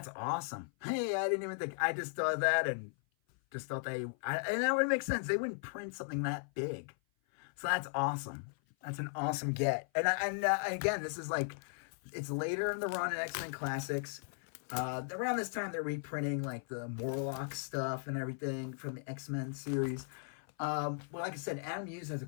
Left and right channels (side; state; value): right; silent; 53 dB below the other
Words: awesome. Hey, I didn't even think, I just thought that, and just thought and that would make sense. They wouldn't print something that big. So that's awesome. That's an awesome get. And again, this is like, it's later in the run in X-Men Classics. Around this time, they're reprinting like the Morlock stuff and everything from the X-Men series. Well, like I said, Adam Hughes has a